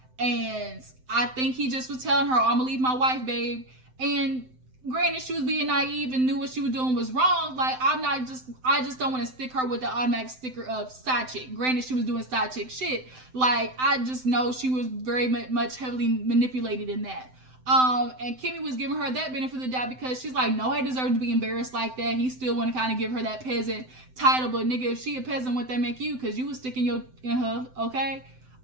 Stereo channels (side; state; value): left; late; 7.8 ms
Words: And I think he just was telling her, oh, I'm gonna leave my wife, babe. And granted, she was being naive and knew what she was doing was wrong. Like, I just don't want to stick her with the automatic sticker of side chick. Granted, she was doing side chick shit. Like, I just know she was very much heavily manipulated in that. And Kimmy was giving her that benefit of the doubt because she's like, no, I deserve to be embarrassed like that. He still want to kind of give her that peasant title, but nigga, if she a peasant, what that make you? Because you was sticking in her, okay?